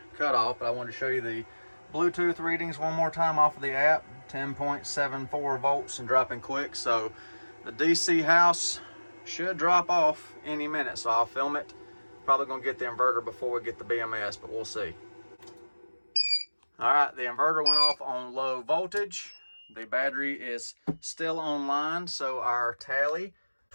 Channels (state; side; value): inverted; both; correlation -1.00